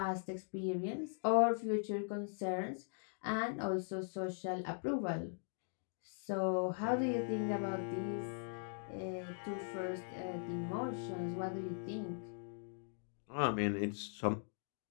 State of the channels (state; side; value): silent; right; digital silence